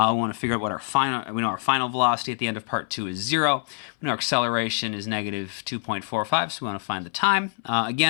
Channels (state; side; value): silent; right; 60 dB below the other